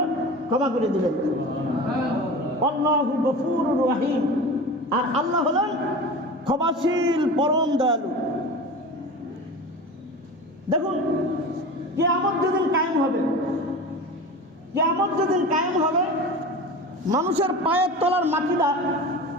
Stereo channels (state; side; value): normal; both; correlation 0.32